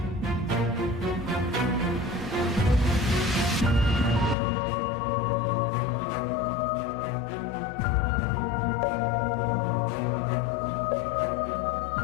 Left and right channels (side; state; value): right; drops out; at 4.4 s